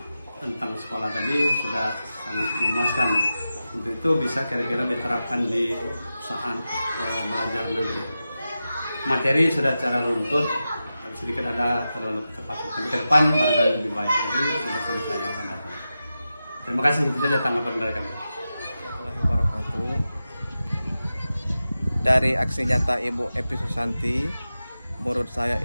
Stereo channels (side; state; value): both; inverted; correlation -0.92